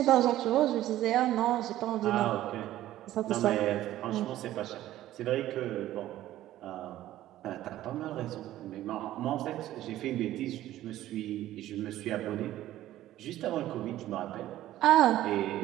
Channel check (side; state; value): left; quieter; 14.1 dB